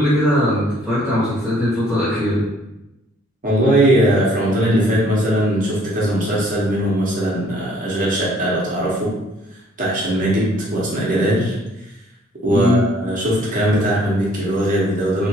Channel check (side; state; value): both; normal; correlation 0.61